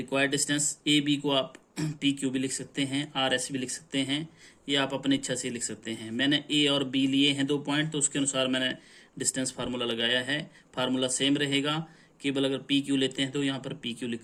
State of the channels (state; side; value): identical; both; correlation 1.00